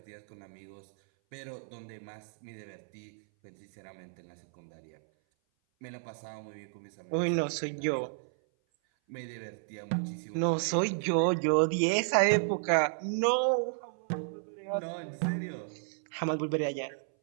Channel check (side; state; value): left; silent; 56 dB below the other